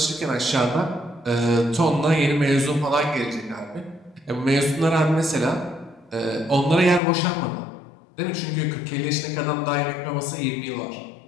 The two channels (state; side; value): drops out; right; at 7.0 s